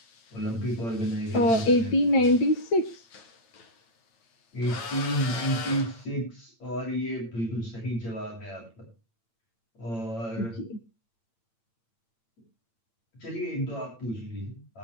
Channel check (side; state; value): right; late; 8.8 ms